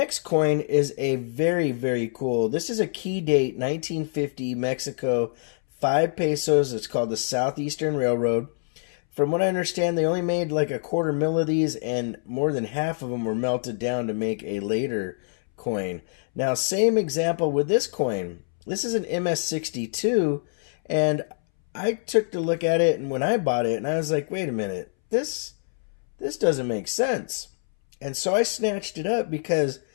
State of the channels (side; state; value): right; silent; 62 dB below the other